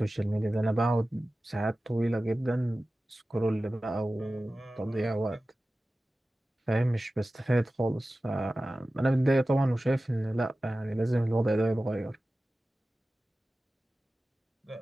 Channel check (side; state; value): both; normal; correlation 0.96